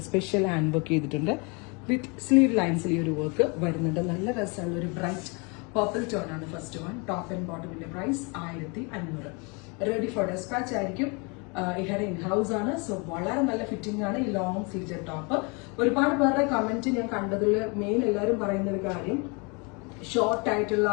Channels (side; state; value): right; quieter; 31.2 dB